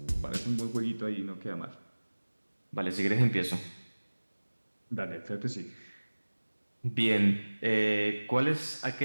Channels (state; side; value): inverted; both; correlation -1.00